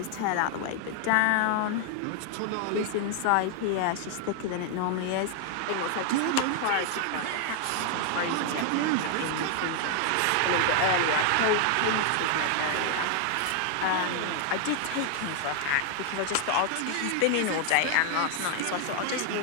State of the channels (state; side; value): different; both; correlation 0.00